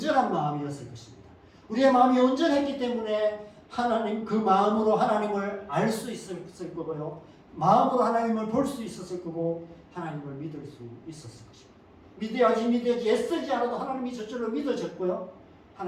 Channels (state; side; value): identical; both; correlation 1.00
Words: 마음이었을 것입니다. 우리의 마음이 온전했기 때문에 하나님 그 마음으로 하나님을 알 수 있었을 거고요. 마음으로 하나님을 볼 수 있었을 거고 하나님을 믿을 수 있었을 것입니다. 믿어야지 애쓰지 않아도 하나님이 저절로 믿어졌고요.